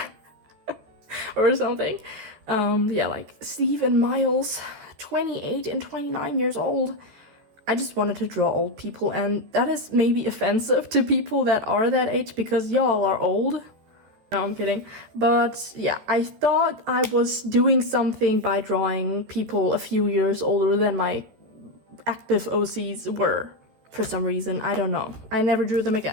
or something. Yeah, like Steve and Miles, 28 and 29 years old. I just wanted to draw old people, and that is maybe offensive to people that are that age because y'all are old. No, I'm kidding. But yeah, I thought I was doing something by drawing people a few years older than my active OCs were. For some reason, I don't know. I never drew them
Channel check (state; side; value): late; left; 14 ms